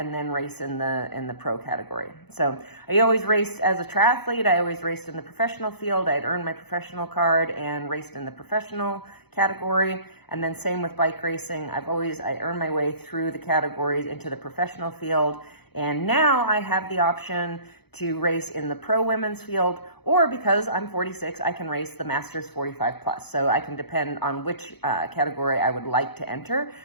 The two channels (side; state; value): right; late; 0.98 ms